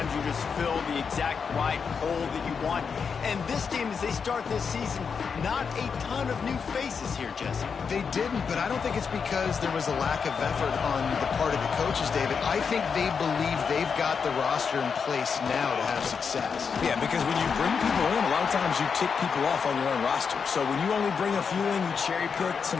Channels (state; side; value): quieter; right; 6.0 dB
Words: you just fill the exact right hole that you want. And this team, as they start this season, not a ton of new faces here, Jesse. They didn't, but I don't think it's because there was a lack of effort on the part of the coaches, David. I think they believe they've got the roster in place now to have success. Yeah, because when you bring people in, a lot of times you tick people off on your own roster. So when you only bring a few in, you cherry pick